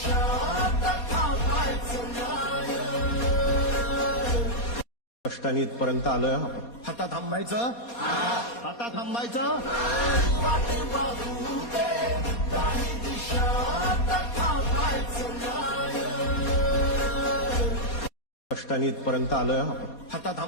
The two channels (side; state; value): right; late; 4.2 ms